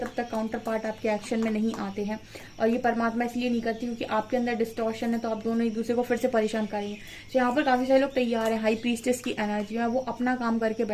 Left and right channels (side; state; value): both; identical; correlation 1.00